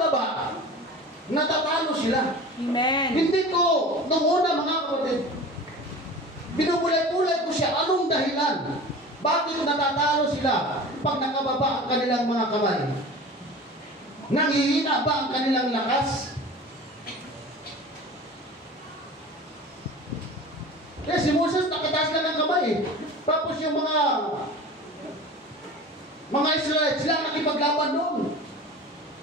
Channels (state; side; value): normal; both; correlation 0.37